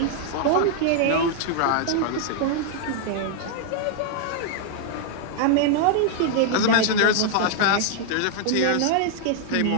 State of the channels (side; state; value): both; different; correlation -0.01